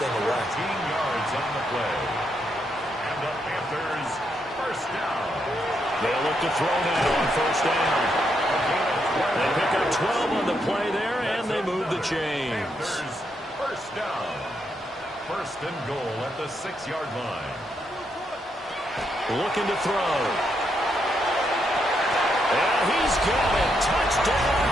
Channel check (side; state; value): both; normal; correlation 0.79